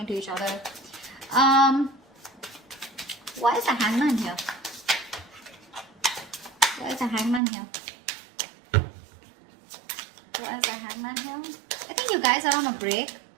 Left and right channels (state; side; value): drops out; left; at 7.4 s